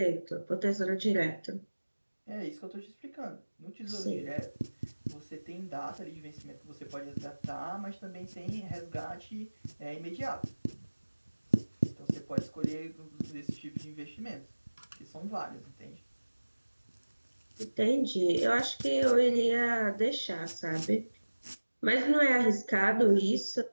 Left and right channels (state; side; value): inverted; both; correlation -1.00